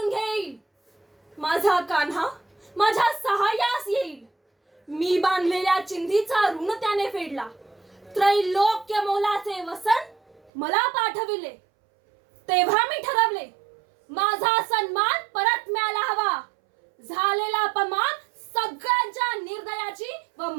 घेईल. माझा कान्हा माझ्या सहाय्यास येईल. मी बांधलेल्या चिंधीचा ऋण त्याने फेडला. त्रैलोक्य मोलाचे वसन मला पाठविले. तेव्हा मी ठरवले, माझा सन्मान परत मिळायला हवा. झालेला अपमान सगळ्यांच्या निर्दयाची व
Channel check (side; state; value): left; drops out; at 10.5 s